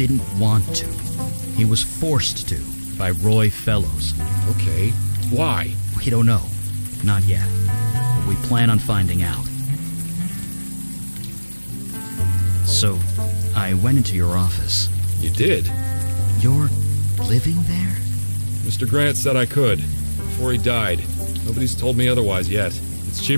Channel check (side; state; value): both; inverted; correlation -1.00